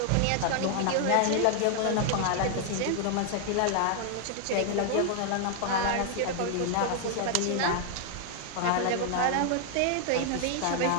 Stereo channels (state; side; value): different; both; correlation 0.00